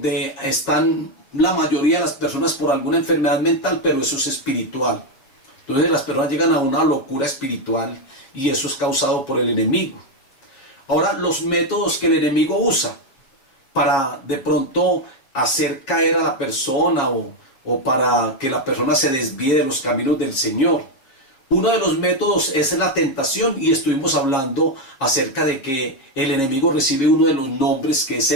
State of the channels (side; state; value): right; late; 7.4 ms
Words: están la mayoría de las personas por alguna enfermedad mental, pero eso es espiritual. Entonces las personas llegan a una locura espiritual, y eso es causado por el enemigo. Ahora, los métodos que el enemigo usa para de pronto hacer caer a la persona o para que la persona se desvíe de los caminos del Señor. Uno de los métodos es la tentación, y estuvimos hablando acerca de que el enemigo recibe uno de los nombres, que es